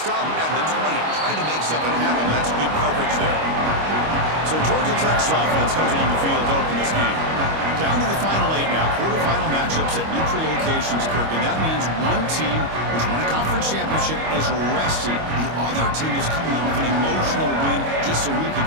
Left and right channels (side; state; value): left; late; 25 ms